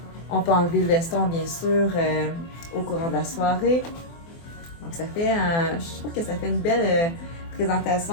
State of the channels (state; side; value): late; right; 24 ms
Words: on peut enlever le veston, bien sûr, au courant de la soirée. Donc, je trouve que ça fait une belle